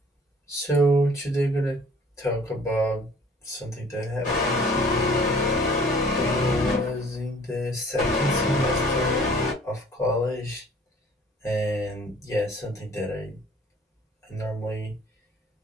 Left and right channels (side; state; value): both; normal; correlation 0.53